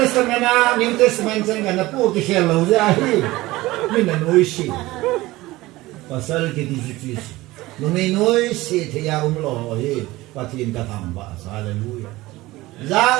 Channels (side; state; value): left; quieter; 18.9 dB